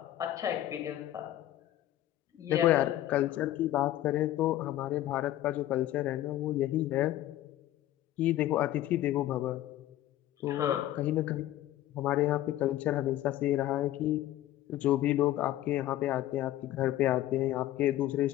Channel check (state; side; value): quieter; right; 13.9 dB